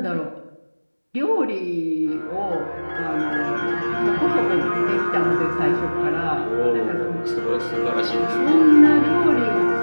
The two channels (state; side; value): inverted; both; correlation -1.00